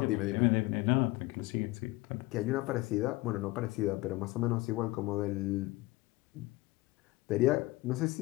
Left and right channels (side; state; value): right; quieter; 20.6 dB